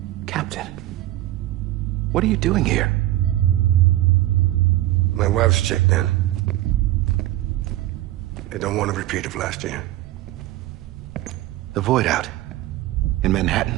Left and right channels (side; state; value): left; quieter; 15.3 dB